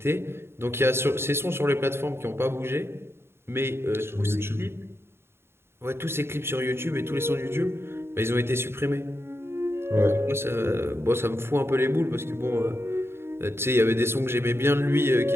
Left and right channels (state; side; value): late; left; 0.12 ms